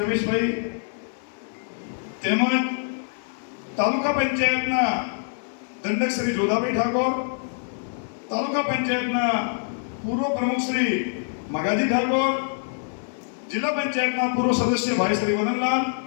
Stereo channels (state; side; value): silent; right; digital silence